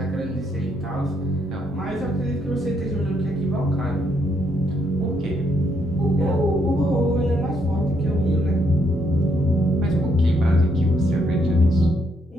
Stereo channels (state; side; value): normal; both; correlation 0.74